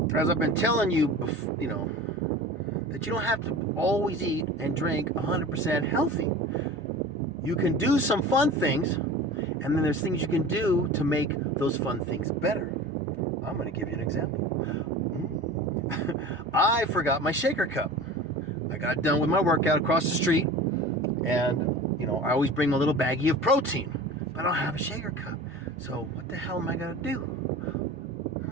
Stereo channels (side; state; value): both; normal; correlation 0.37